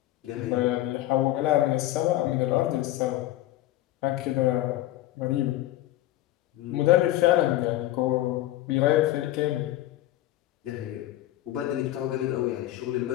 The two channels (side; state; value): right; quieter; 15.0 dB